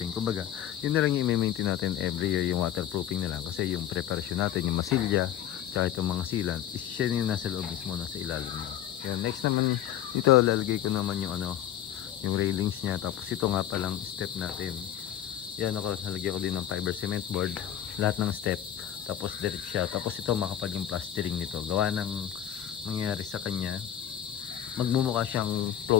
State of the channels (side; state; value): right; quieter; 11.0 dB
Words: Kumbaga, yun na lang yung i-maintain natin every year yung waterproofing na lang. Kasi yung preparasyon natin, yung masilya, tsaka itong mga sealant, is siya yung nasa loob mismo, nasa ilalim mo. Yan, next naman, ito lalagay ko naman yung yung railings niya. Tapos ito nga palang step natin. Yan ako, nalagyan ko din ng fiber cement board. Lahat ng step. Tapos direct siya. Tapos ito makapal yung plastering nito. Gawa ng nangyari sa kanya. Magmumukha siyang